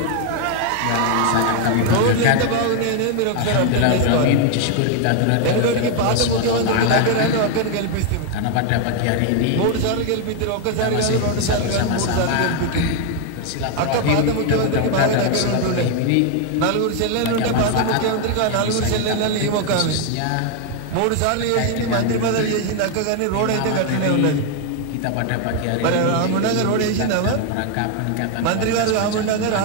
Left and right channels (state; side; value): different; both; correlation 0.01